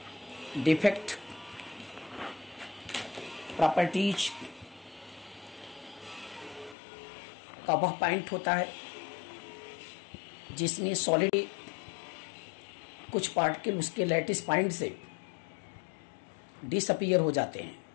डिफेक्ट, प्रॉपर्टीज का वह पॉइंट होता है जिसमें सॉलिड कुछ पार्टिकल उसके लैटिस पॉइंट से डिसअपीयर हो जाते हैं,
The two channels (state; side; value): drops out; right; at 6.8 s